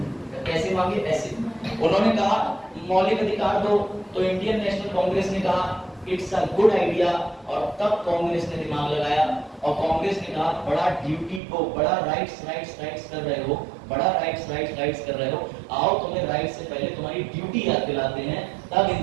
कैसे मांगे? ऐसे। उन्होंने कहा मौलिक अधिकार दो, तो इंडियन नेशनल कांग्रेस ने कहा इट्स अ गुड आइडिया, और तब कांग्रेस ने दिमाग लगाया और कांग्रेस ने कहा बड़ा ड्यूटी को, बड़ा राइट्स कर रहे हो, बड़ा राइट्स कर रहे हो, आओ तुम्हें राइट्स से पहले तुम्हारी ड्यूटी याद दिलाते हैं। तब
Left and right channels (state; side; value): drops out; left; at 11.4 s